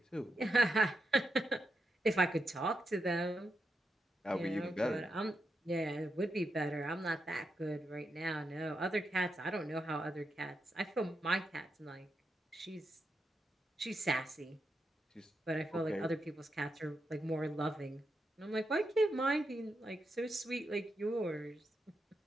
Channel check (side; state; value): both; normal; correlation 0.85